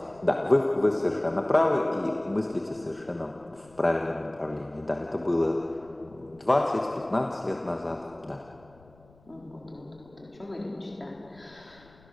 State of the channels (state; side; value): noise; left; rumble, 27 dB below the sound